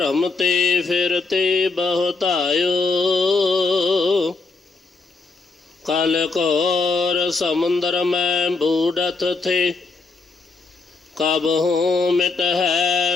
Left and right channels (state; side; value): quieter; right; 4.0 dB